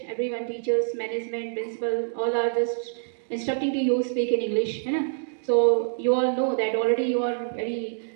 everyone, teachers, management, principal, all are just instructing to you speak in English. So you all know that already you are very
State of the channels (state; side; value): silent; left; digital silence